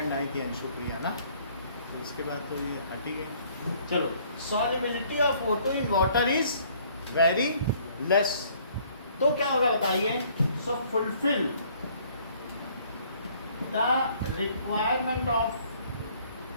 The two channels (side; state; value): both; inverted; correlation -0.60